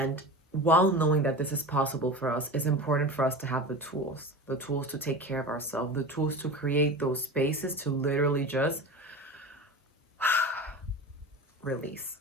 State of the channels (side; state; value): both; normal; correlation 0.30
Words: while knowing that this is possible for us, it's important for us to have the tools to take care of ourselves, the tools to create those spaces to literally just release.